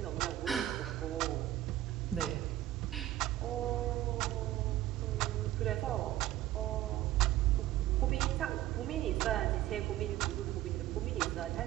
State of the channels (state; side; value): quieter; left; 14.1 dB